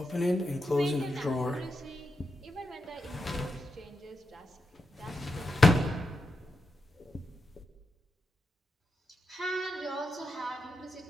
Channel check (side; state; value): both; normal; correlation 0.87